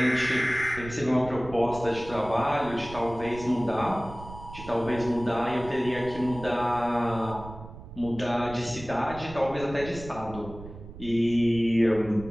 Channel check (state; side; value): noise; right; rumble, 14 dB below the sound